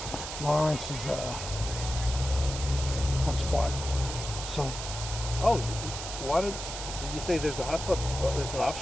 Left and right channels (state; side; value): noise; right; hiss, 7 dB below the sound